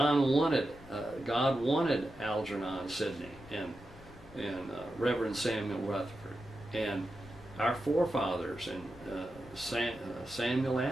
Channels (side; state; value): left; noise; rumble, 20 dB below the sound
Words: wanted Algernon Sidney and Reverend Samuel Rutherford and our forefathers and Samuel